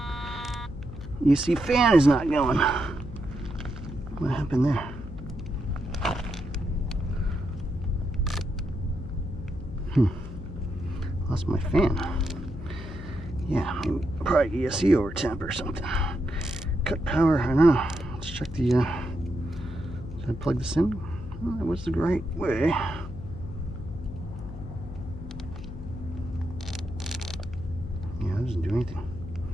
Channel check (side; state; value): left; noise; hum, 11 dB below the sound